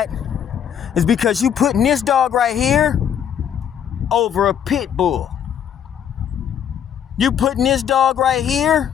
is because you putting this dog right here over a pit bull. You putting this dog right here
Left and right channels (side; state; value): right; quieter; 8.8 dB